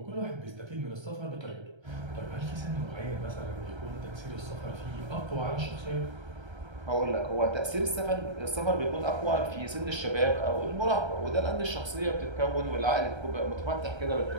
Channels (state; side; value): late; left; 1.3 ms